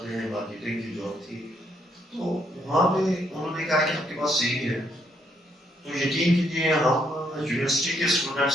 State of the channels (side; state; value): both; normal; correlation 0.73